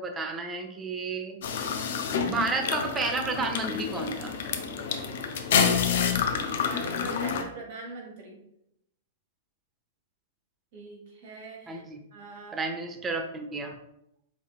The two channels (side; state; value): right; quieter; 3.1 dB